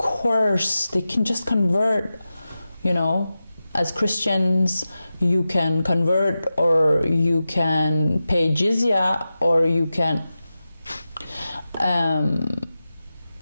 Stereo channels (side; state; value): both; inverted; correlation -0.93